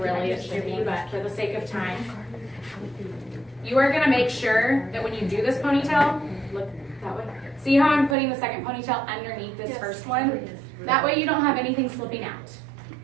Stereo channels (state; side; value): drops out; left; at 8.2 s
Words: it should be, but for the sake of time, you are going to make sure that when you do this ponytail, look that way. See how I'm putting the second ponytail underneath this first one? That way you don't have anything slipping out.